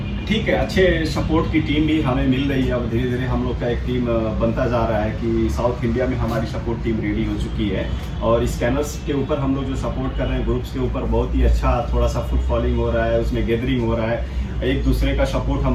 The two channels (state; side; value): identical; both; correlation 1.00